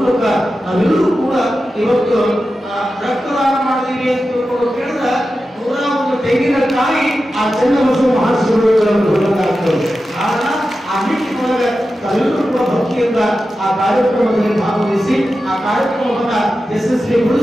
ನಾವೆಲ್ಲರೂ ಕೂಡ ಇವತ್ತು ರಕ್ತದಾನ ಮಾಡಿದೀವಿ ಅಂತ ತಿಳ್ಕೊಂಡು ಕೇಳಿದ್ರೆ 101 ತೆಂಗಿನಕಾಯಿ ಆ ಚನ್ನಬಸವ ಮಹಾಶಿವಯೋಗಿಗಳನ್ನು ಹೊರಗಾಗ್ತದೆ. ಕಾರಣ ಆ ನಿಟ್ಟಿನೊಳಗೆ ತಾವೆಲ್ಲರೂ ಕೂಡ ಭಕ್ತಿಯಿಂದ ಆ ಕಾರ್ಯಕ್ರಮದಲ್ಲಿ ಭಾಗವಹಿಸಿ ಆ ಕಾರ್ಯಕ್ರಮವನ್ನ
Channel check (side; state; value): both; normal; correlation 0.92